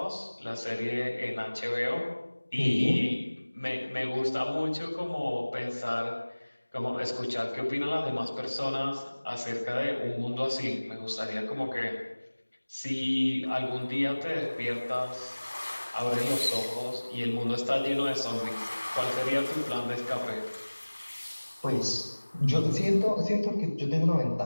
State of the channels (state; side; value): inverted; both; correlation -1.00